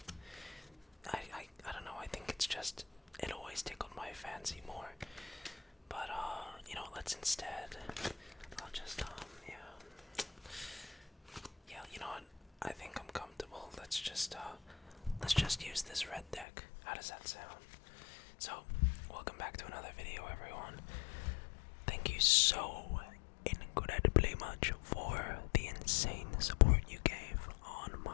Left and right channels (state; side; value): drops out; right; at 16.4 s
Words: I don't know, I think it's just, it always tickled my fancy more. But, let's instead, I'll just, yeah, you know what? I think I'm comfortable. Let's just use this red deck. How does that sound? So, welcome back to another video, everyone. Thank you so incredibly much for the insane support you gave on